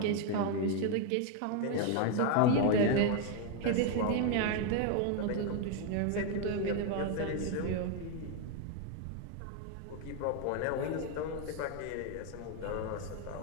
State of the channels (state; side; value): different; both; correlation 0.01